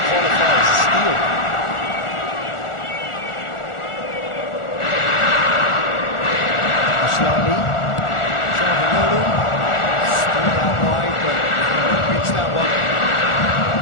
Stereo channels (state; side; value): late; right; 1.4 ms